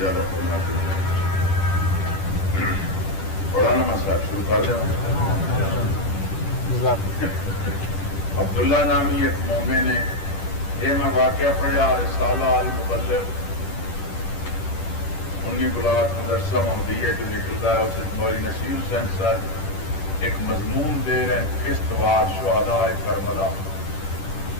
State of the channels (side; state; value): right; late; 10 ms